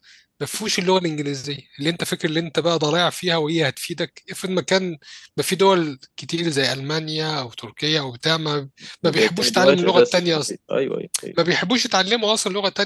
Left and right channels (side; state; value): both; identical; correlation 1.00